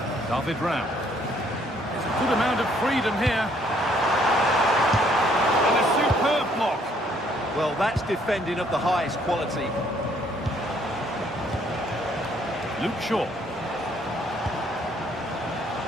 David Rao. There's a good amount of freedom here. And a superb block. Well, that's defending of the highest quality. Luke Shaw.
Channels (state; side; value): normal; both; correlation 0.65